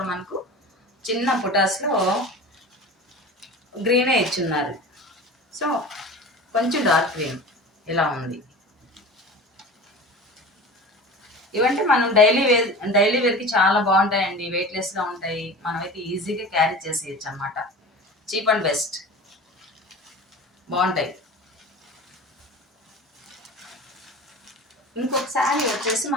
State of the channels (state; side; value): normal; both; correlation 0.35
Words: మనకు చిన్న పుటాస్లో గ్రీనే ఇచ్చున్నారు. సో కొంచెం డార్క్ గ్రీన్ ఇలా ఉంది. ఇవంటే మనం డైలీ వేర్కి చాలా బాగుంటాయండి. వెయిట్లెస్గా ఉంటాయి, మనమైతే ఈజీగా క్యారీ చేసేయచ్చు అన్నమాట. చీప్ అండ్ బెస్ట్, బాగుంటాయి. ఇంకొక శారీ వచ్చేసి